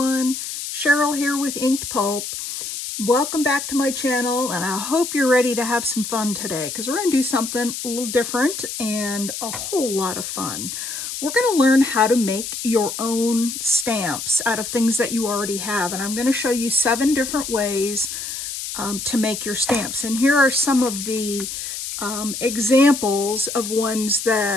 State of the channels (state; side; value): noise; left; hiss, 6 dB below the sound